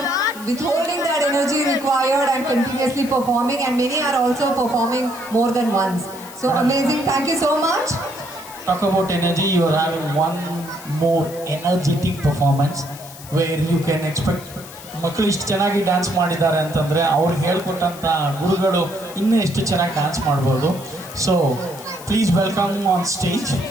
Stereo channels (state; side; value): noise; left; hiss, 17 dB below the sound